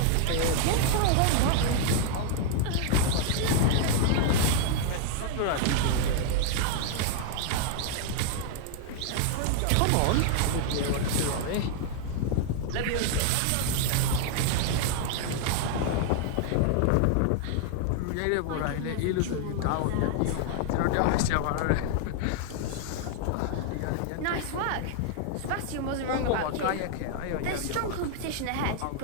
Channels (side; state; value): both; different; correlation 0.00